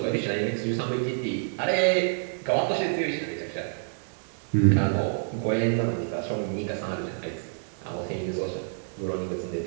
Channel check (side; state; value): left; silent; digital silence